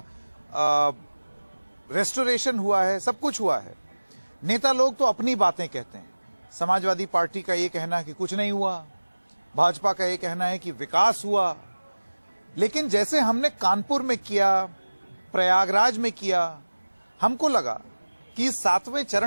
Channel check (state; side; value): inverted; both; correlation -1.00